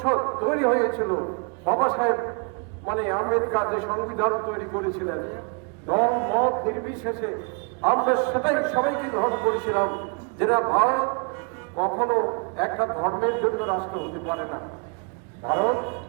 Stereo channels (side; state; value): left; quieter; 36.3 dB